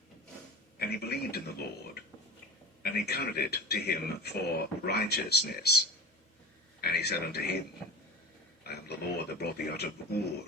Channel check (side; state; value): both; normal; correlation 0.35